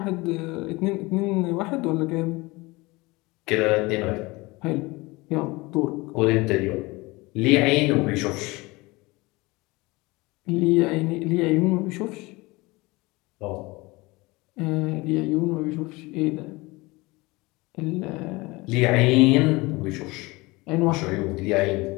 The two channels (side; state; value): right; quieter; 23.0 dB